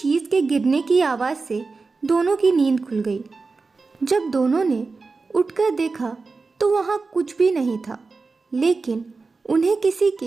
के गिरने की आवाज़ से दोनों की नींद खुल गई। जब दोनों ने उठकर देखा तो वहाँ कुछ भी नहीं था, लेकिन उन्हें किसी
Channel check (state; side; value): quieter; left; 4.1 dB